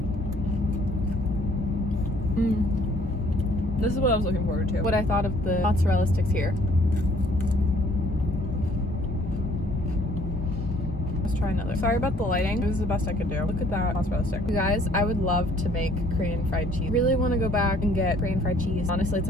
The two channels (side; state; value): both; normal; correlation 0.60